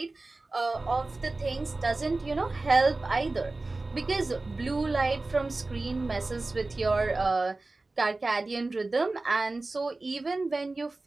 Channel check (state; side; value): quieter; left; 3.2 dB